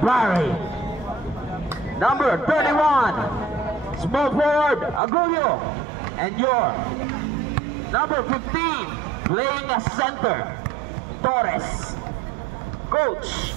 Barry. Number 31, small forward, Agulio. And your number 15, playing as center, Torres. Coach.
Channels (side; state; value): left; drops out; at 5.0 s